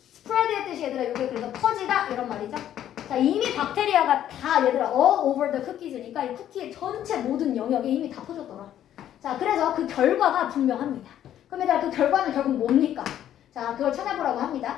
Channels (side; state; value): right; quieter; 11.2 dB